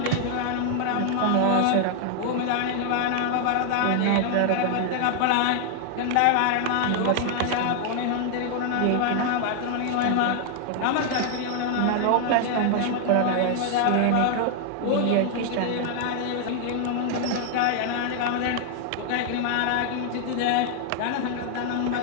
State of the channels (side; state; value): both; different; correlation 0.00